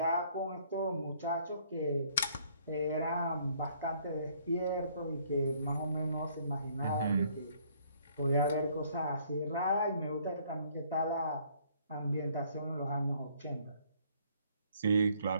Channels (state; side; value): inverted; both; correlation -0.63